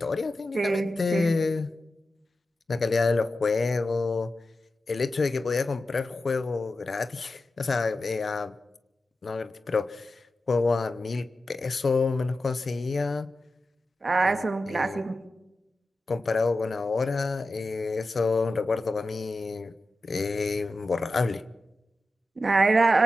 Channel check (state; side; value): normal; both; correlation 0.92